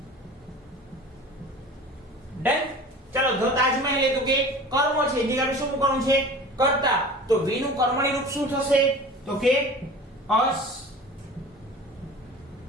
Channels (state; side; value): normal; both; correlation 0.39